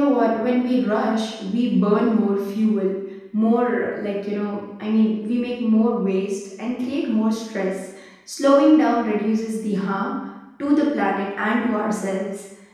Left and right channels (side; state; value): both; identical; correlation 1.00